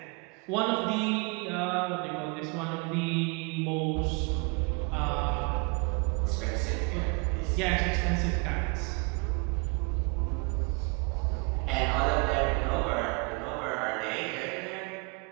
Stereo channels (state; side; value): quieter; left; 32.0 dB